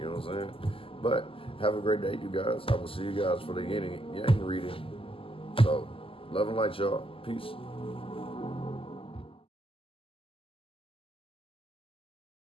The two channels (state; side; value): late; right; 0.26 ms